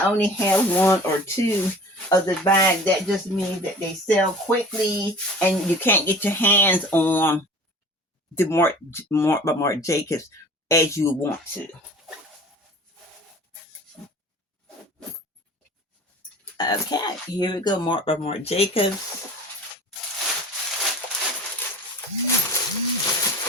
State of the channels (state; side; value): normal; both; correlation 0.42